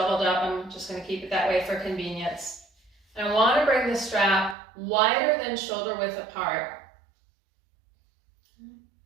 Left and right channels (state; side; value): drops out; left; at 4.5 s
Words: up. I'm just going to keep it that way for convenience. And I want to bring the strap wider than shoulder width apart.